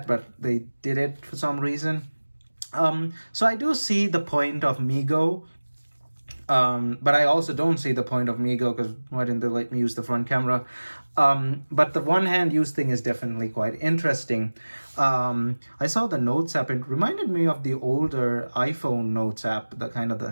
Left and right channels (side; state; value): both; inverted; correlation -1.00